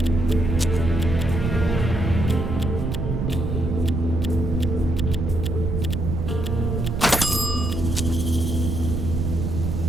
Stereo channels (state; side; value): noise; right; rumble, 2 dB below the sound